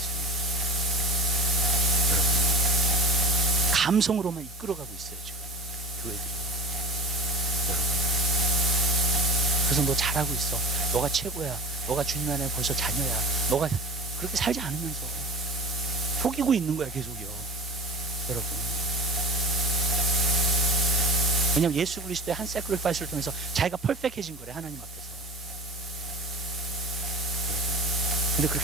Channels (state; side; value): normal; both; correlation 0.36